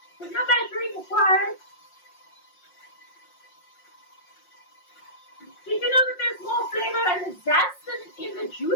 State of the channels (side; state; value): right; late; 5.6 ms